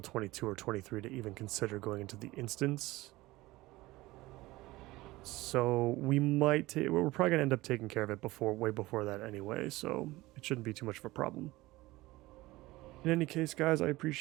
22 or 23 to even consider going into the instance. So we might, we're probably going to end up taking care of it way before that anyway, so it shouldn't be too much of a problem. In any case, guys, I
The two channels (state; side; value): quieter; left; 19.2 dB